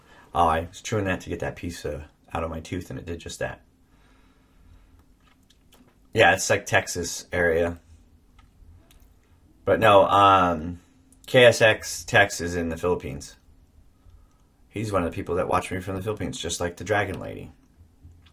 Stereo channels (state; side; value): identical; both; correlation 1.00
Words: Oh, I was chewing that to get that piece out of my tooth, and it did just that. Yeah, it's like Texas area. But no, KSX Tex is in the Philippines. He's one of the people that watch me from the Philippines, just like the Dragon Lady.